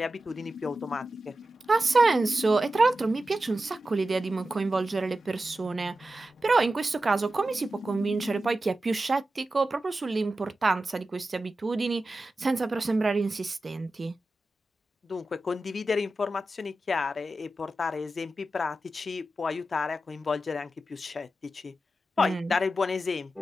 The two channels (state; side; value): normal; both; correlation 0.92